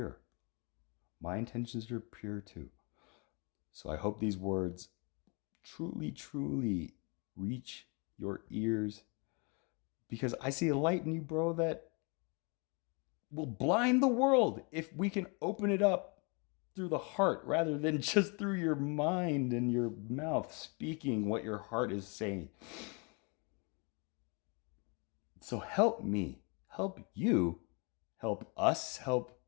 My intentions are pure too. So I hope these words truly, truly reach your ears, because I see a light in you, bro, that will blind the world if we can open it up through the heart rather than just through your mind and your mouth speaking what your heart is saying. So help me, help you, help us, help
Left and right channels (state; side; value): quieter; right; 32.7 dB